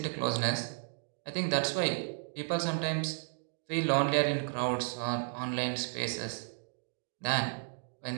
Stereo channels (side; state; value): left; silent; digital silence